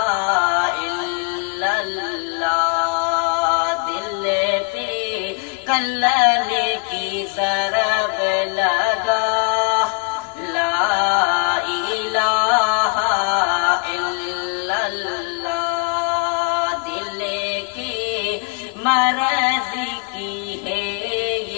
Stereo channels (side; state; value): right; quieter; 33.2 dB